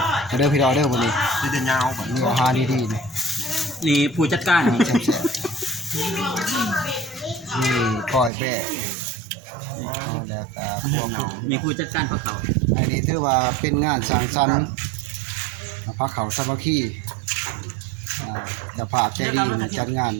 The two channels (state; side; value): drops out; left; at 8.3 s